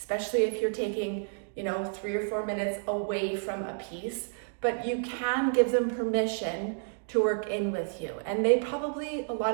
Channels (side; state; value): left; silent; digital silence